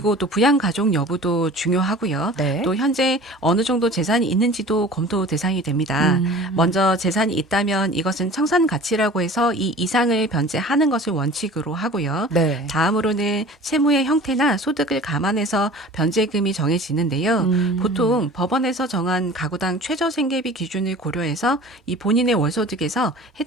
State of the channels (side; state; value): both; normal; correlation 0.42